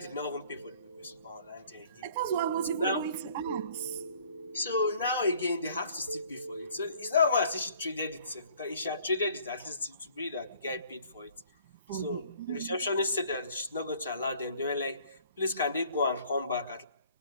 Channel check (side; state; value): both; inverted; correlation -0.56